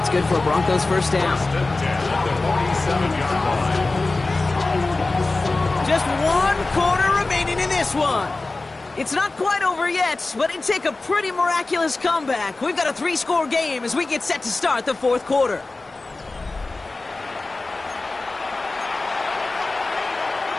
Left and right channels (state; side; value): quieter; right; 3.3 dB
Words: good for a Broncos 1st down. Just 1 quarter remaining in this one. It's not quite over yet, but it'd take a pretty miraculous comeback. We've got a 3-score game as we get set to start the 4th quarter.